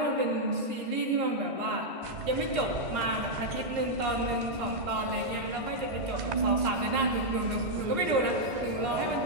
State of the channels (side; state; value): left; late; 1.5 ms